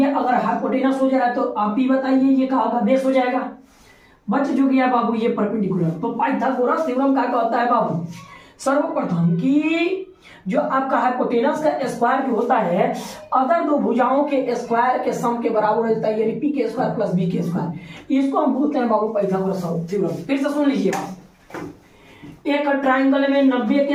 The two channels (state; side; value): identical; both; correlation 1.00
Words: अगर हाइपोटेनस हो जा रहा है तो आप ही बताइए ये कहा होगा, बेस हो जाएगा। बच जो गया बाबू ये परपेंडिकुलर। तो पाइथागोरस थ्योरम क्या कहता है बाबू, सर्वप्रथम कि जो आपका हाइपोटेनस का स्क्वायर जो होता है अदर दो भुजाओं के स्क्वायर के सम के बराबर होता है, यानी पी के स्क्वायर प्लस बी के स्क्वायर। इसको हम बोलते हैं बाबू पाइथागोरस थ्योरम। फिर से सुन लीजिएगा, एक ट्रायंगल में 90